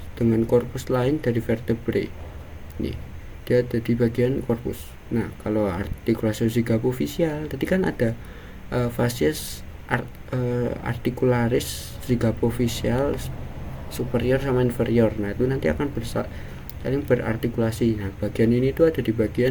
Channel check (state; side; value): identical; both; correlation 1.00